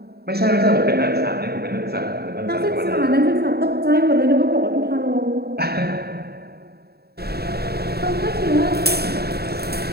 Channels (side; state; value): left; late; 0.46 ms